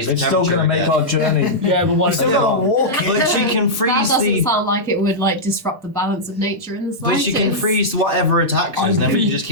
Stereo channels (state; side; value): late; left; 1.3 ms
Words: the It's still temperature going to make again. our journey. Yeah, but what Still got to walk. But she can That freeze doesn't the. sound like it would like disrupt the balance of nature in the But slightest. she can freeze whatever attacks us, and then we can just